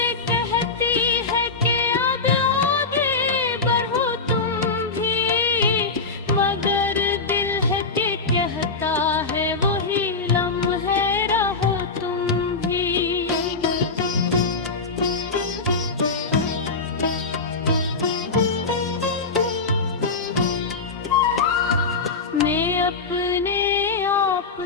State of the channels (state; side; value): quieter; right; 4.2 dB